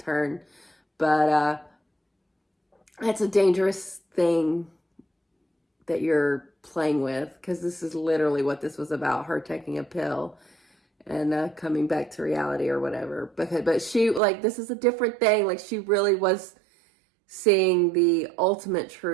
but it's a dangerous thing that you're playing with, because this is literally what this was about, her taking a pill and coming back to reality or whatever. But she, like, this is a different thing. Like, she really was seeing the ultimate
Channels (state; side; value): drops out; left; at 14.2 s